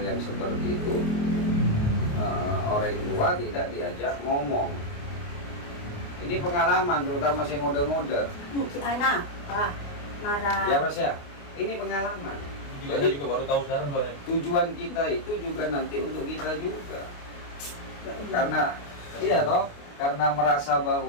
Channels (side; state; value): right; late; 28 ms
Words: seperti itu orang tua tidak diajak ngomong. Ini pengalaman terutama saya ngode-ngode Si anak, marah. ya Mas ya, ini pengalaman. Juga Jadi- saya juga baru tahu sekarang soalnya. Tujuan kita itu juga nanti untuk kita juga karena iya toh karena merasa